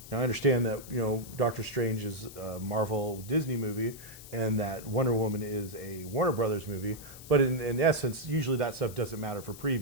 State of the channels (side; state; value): left; noise; hiss, 16 dB below the sound